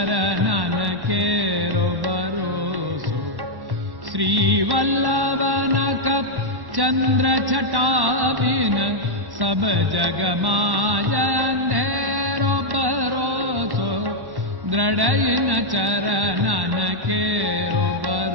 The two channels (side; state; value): left; late; 1.1 ms